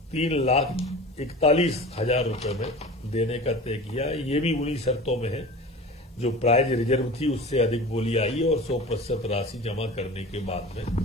रुपए में देने का तय किया है। ये भी उन्हीं शर्तों में है जो प्राइज रिजर्व थी उससे अधिक बोली आई और 100% राशि जमा करने के बाद में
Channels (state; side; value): normal; both; correlation 0.36